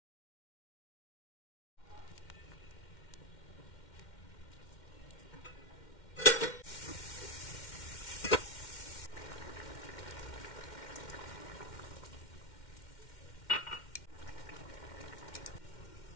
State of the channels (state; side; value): late; right; 2.1 ms